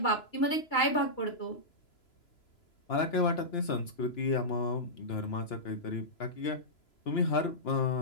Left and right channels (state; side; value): late; right; 3.0 ms